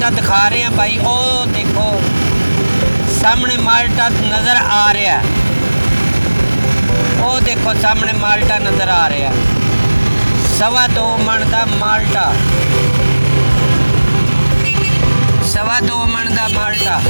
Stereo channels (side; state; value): both; inverted; correlation -1.00